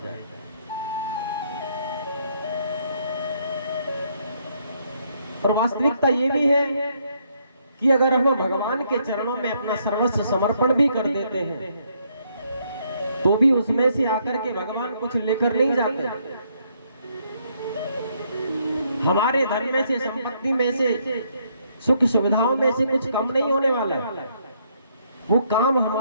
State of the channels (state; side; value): inverted; both; correlation -0.71